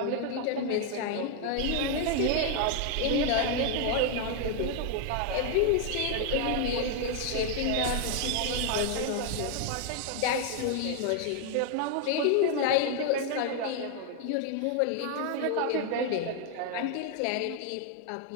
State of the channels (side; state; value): both; different; correlation 0.00